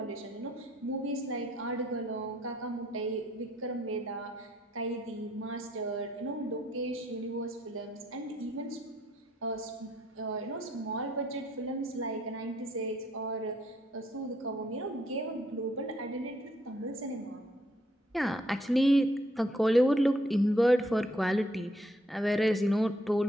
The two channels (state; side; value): normal; both; correlation 0.70